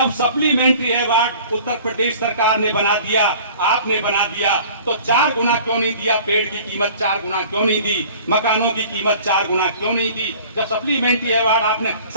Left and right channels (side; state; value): both; inverted; correlation -0.47